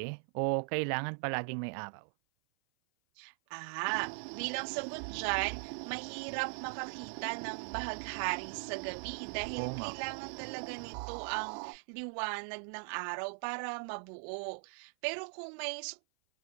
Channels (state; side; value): silent; left; 52 dB below the other